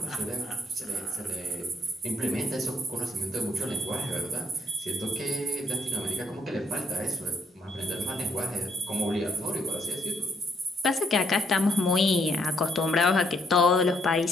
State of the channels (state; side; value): normal; both; correlation 0.71